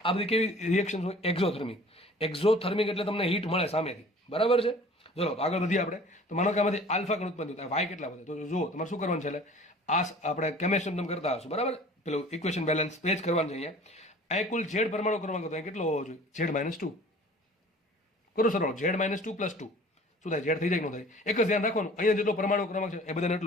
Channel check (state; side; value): normal; both; correlation 0.47